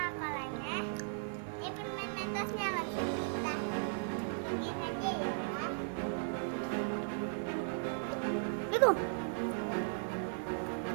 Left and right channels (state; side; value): silent; left; digital silence